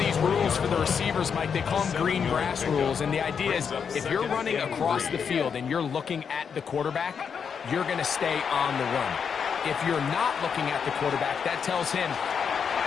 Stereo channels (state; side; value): quieter; right; 6.7 dB